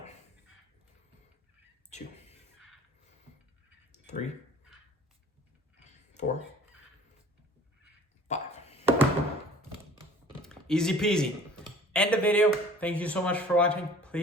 2, 3, 4, 5. Easy peasy. End the video. Thank you so much for watching.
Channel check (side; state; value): both; normal; correlation 0.47